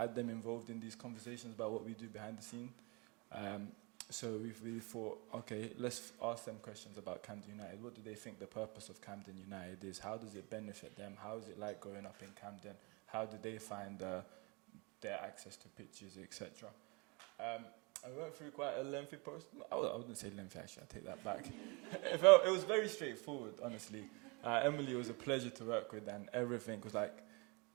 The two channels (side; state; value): left; quieter; 29.3 dB